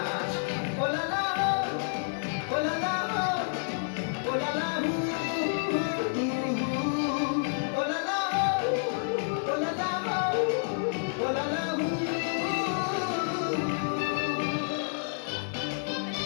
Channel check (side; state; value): right; silent; digital silence